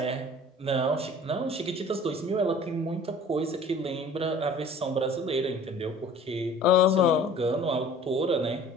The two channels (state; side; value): normal; both; correlation 0.48